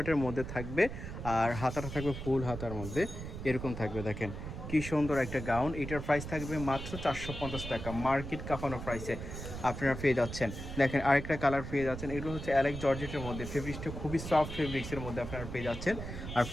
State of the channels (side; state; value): right; noise; rumble, 8 dB below the sound